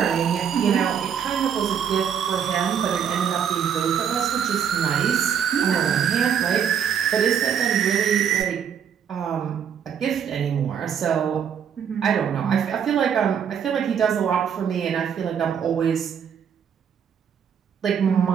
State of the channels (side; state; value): left; quieter; 8.0 dB